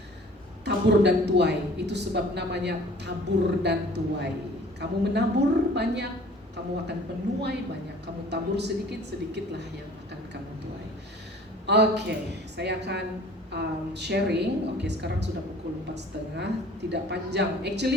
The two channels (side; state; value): both; normal; correlation 0.49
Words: Tabur dan tuai, itu sebab namanya tabur dan tuai. Kamu menabur banyak, kamu akan menuai banyak. Kamu tabur sedikit-sedikitlah yang akan kamu tuai. Oke, saya akan sharing. Oke, sekarang sudah pukul 4:30, tidak panjang.